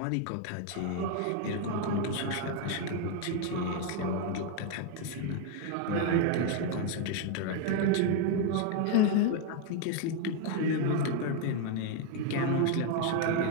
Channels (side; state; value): both; different; correlation 0.01